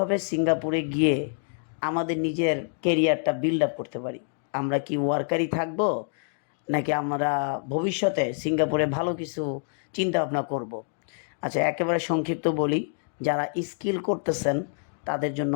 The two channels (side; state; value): right; silent; 60 dB below the other